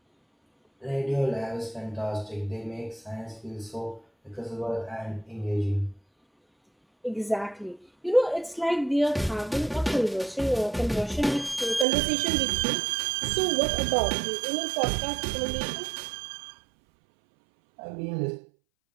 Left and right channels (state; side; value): drops out; left; at 11.9 s